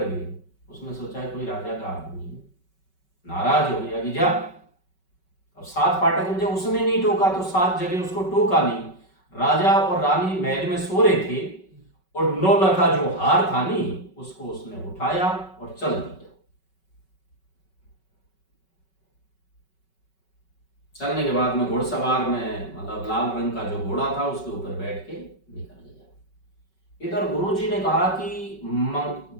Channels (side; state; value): right; late; 5.3 ms